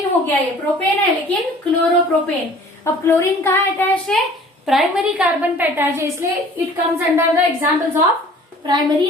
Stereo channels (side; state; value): both; normal; correlation 0.50